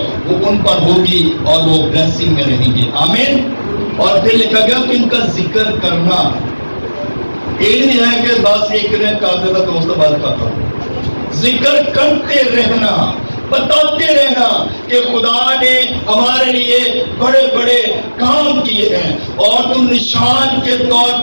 وہ ان پر ہوگی اور وہ بلیسنگ میں رہیں گے. آمین. اور پھر لکھا گیا کہ ان کا ذکر کرنا. یہ نہیں ہے کہ بس ایک نے کہا تھا دوست بات کرتا ہوں. ذکر کرتے رہنا، بتاتے رہنا کہ خدا نے ہمارے لیے بڑے بڑے کام کیے ہیں اور تم نشان کے طور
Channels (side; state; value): both; inverted; correlation -1.00